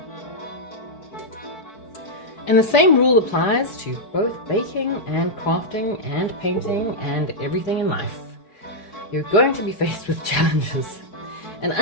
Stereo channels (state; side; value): late; right; 4.9 ms